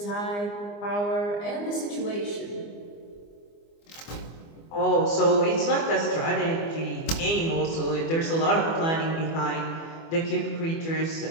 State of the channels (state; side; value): late; right; 24 ms